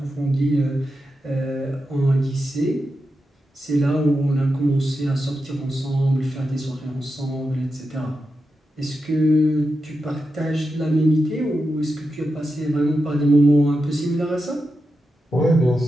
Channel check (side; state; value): both; normal; correlation 0.88